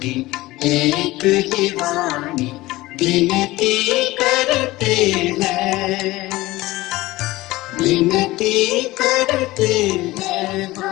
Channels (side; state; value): right; quieter; 18.8 dB